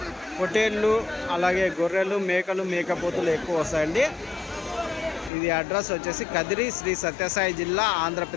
పొట్టేళ్ళు, అలాగే గొర్రెలు, మేకలు, మేకపోతులు ఎక్కువ వస్తాయండి. ఇది అడ్రస్ వచ్చేసి కదిరి, శ్రీ సత్యసాయి జిల్లా,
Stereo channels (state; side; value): drops out; right; at 5.3 s